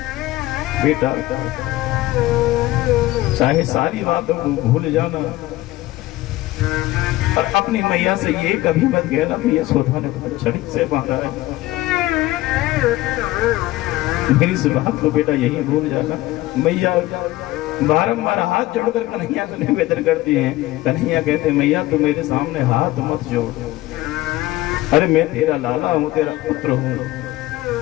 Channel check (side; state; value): right; quieter; 17.3 dB